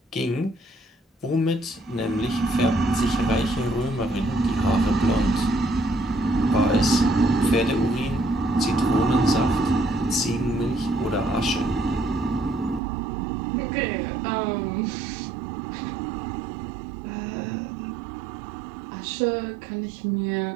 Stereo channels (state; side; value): drops out; left; at 12.8 s